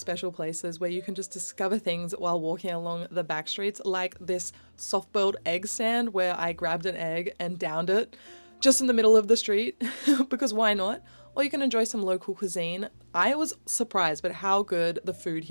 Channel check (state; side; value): inverted; both; correlation -1.00